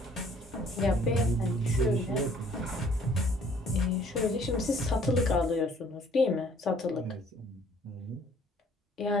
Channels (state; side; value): normal; both; correlation 0.59